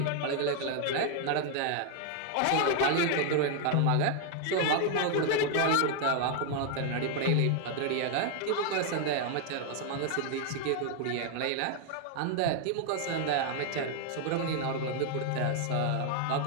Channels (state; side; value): different; both; correlation 0.00